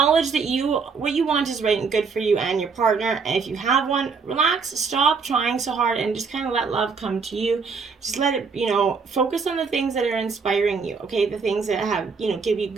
that what you want is right and good for you and your partner. And if you have one, relax, stop trying so hard, and just kind of let love come to you. Just let it, focus on the things that are inspiring you, okay? The things that have, give you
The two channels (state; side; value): quieter; left; 5.2 dB